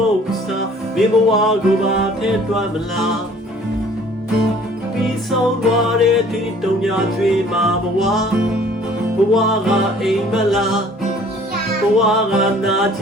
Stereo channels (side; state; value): both; normal; correlation 0.54